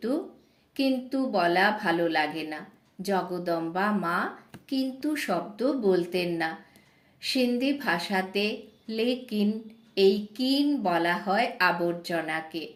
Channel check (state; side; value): identical; both; correlation 1.00